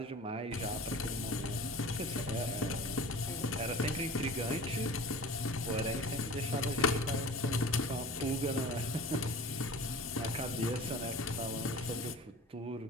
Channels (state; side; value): normal; both; correlation 0.40